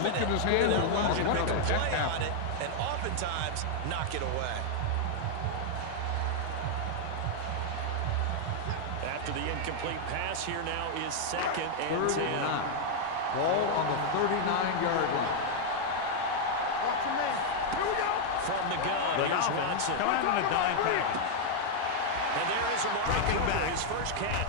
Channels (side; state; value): both; different; correlation -0.01